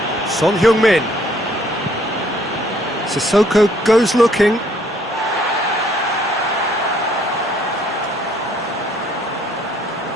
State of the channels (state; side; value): normal; both; correlation 0.63